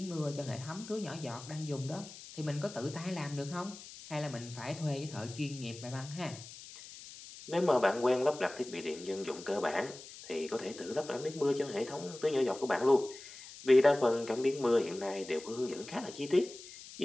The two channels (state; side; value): noise; left; hiss, 15 dB below the sound